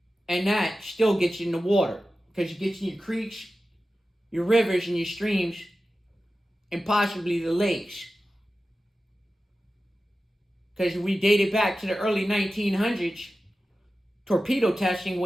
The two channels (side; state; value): both; normal; correlation 0.94